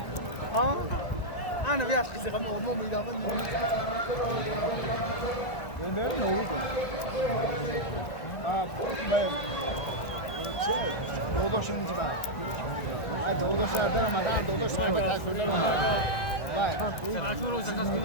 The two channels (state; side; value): late; right; 1.5 ms